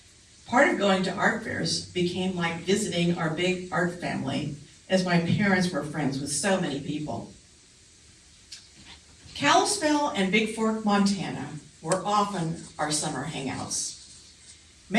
Part of going to art fairs became like visiting our big art family, as my parents were friends with so many people. Kalispell and Big Fork, Montana were often our summer hangouts.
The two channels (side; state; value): both; identical; correlation 1.00